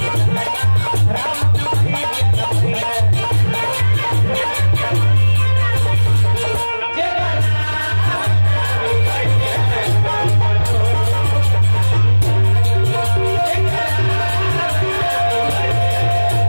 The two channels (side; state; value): both; inverted; correlation -1.00